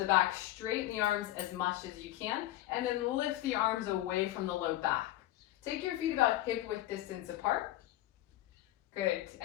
back, straighten the arms as much as you can, and then lift the arms away from the low back. Take your feet about hip width distance apart. Good.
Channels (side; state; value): right; quieter; 15.2 dB